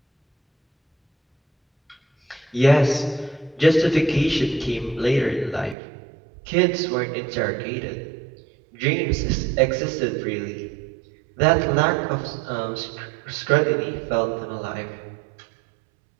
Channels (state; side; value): drops out; left; at 5.8 s